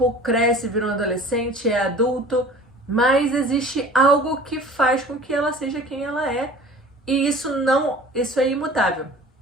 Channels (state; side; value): normal; both; correlation 0.44